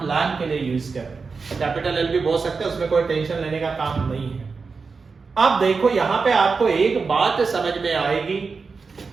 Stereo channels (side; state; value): left; quieter; 4.7 dB